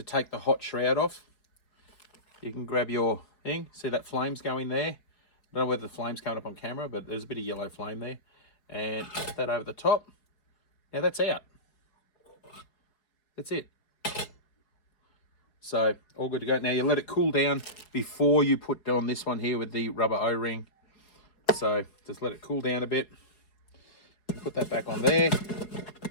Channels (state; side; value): late; right; 4.7 ms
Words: take the hot shroud off. You can grab your thing, see that flame's going there. I don't know whether the flame's coming up on camera, but there's a bit of yellow flame there. And put that over the top. Now that's out. That's it. So all good to go. Now you let it cool down before you put on this one here with the rubber O-ring. So just let it cool down a bit. Put that back on there.